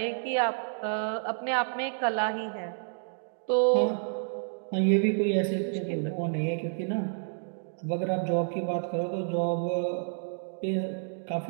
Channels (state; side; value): silent; left; digital silence